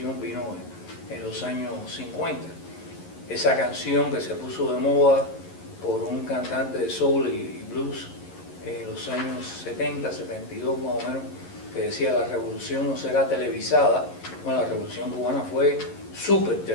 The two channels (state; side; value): late; right; 11 ms